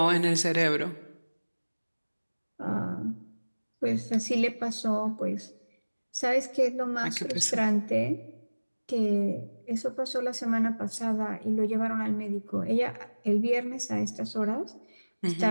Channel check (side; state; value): both; inverted; correlation -1.00